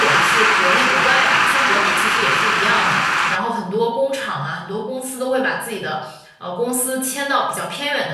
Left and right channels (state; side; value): identical; both; correlation 1.00